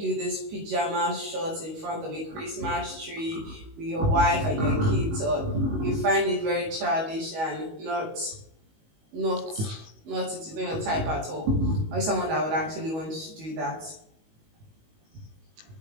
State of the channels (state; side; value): late; left; 19 ms